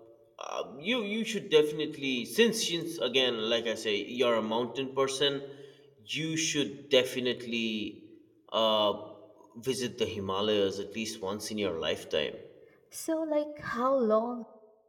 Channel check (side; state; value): both; identical; correlation 1.00